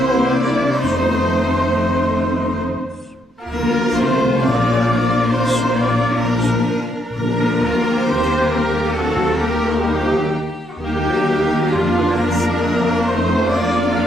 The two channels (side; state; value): both; normal; correlation 0.77